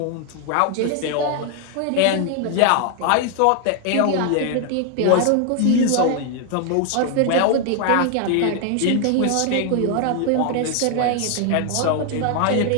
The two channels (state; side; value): different; both; correlation 0.00